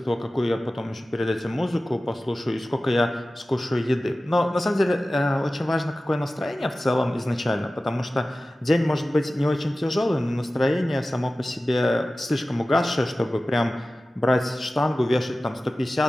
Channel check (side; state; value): both; normal; correlation 0.96